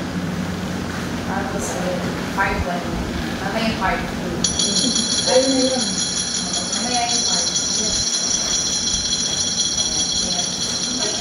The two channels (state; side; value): identical; both; correlation 1.00